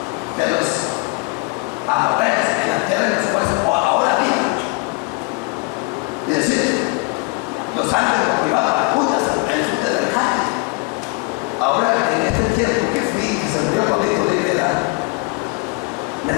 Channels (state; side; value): quieter; right; 30.8 dB